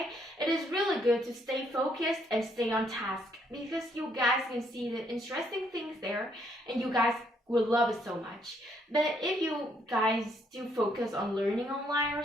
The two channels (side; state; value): both; normal; correlation 0.71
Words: It is really good to stay focused and stay on task because you guys can see the interesting things there, and you guys will love it so much. But if you guys do focus on learning online or